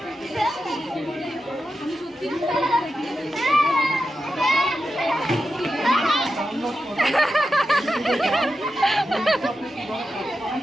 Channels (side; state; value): both; normal; correlation 0.90